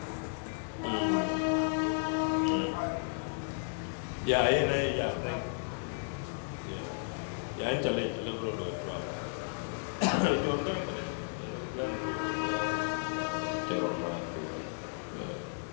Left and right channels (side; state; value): right; silent; digital silence